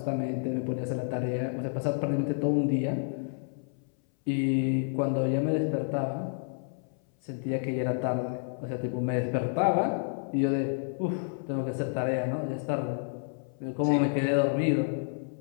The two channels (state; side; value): silent; right; 58 dB below the other